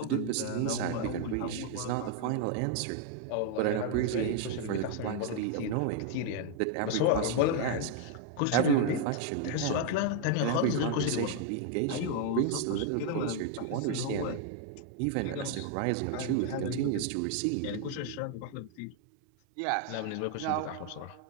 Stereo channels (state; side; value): different; both; correlation 0.00